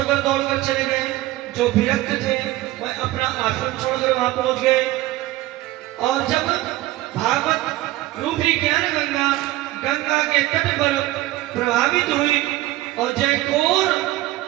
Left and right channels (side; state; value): left; quieter; 16.9 dB